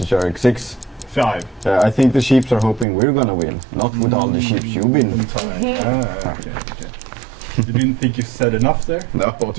Jerk 6? 5. I think the sheeps are hoping we're gonna win, not with all the sheep you've been. Okay. You didn't think you said enough there? No,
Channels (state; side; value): drops out; left; at 2.9 s